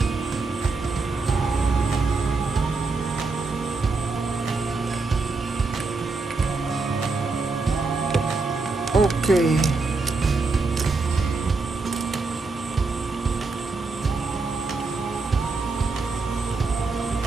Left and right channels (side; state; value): left; quieter; 3.9 dB